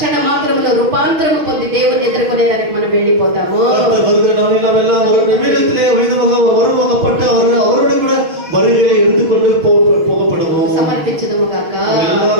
మాత్రములో రూపాంతరము పొంది దేవుని ఎదుర్కొనే దానికి మనం వెళ్ళిపోతాము கர்த்தர் வருகிற நாளில் நாம் எல்லாம் ஒரு நிமிடத்திலே வருவாகப்பட்டு அவரோடு கூட வருகையை எடுத்துக்கொண்டு போகப்படுவோம் సమర్పించుదుము గాక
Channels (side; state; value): left; late; 6.3 ms